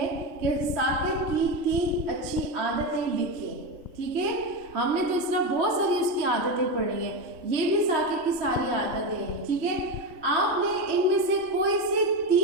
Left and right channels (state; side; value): late; left; 3.1 ms